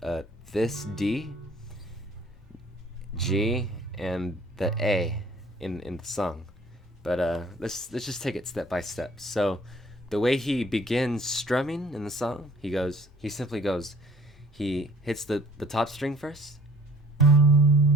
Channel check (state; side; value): normal; both; correlation 0.55